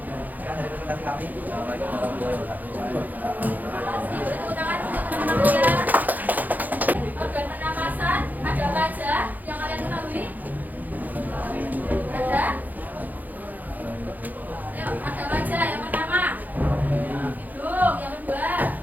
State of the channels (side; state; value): left; late; 0.083 ms